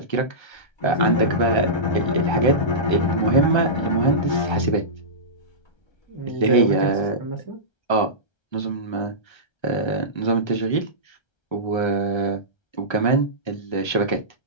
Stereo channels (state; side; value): late; right; 1.3 ms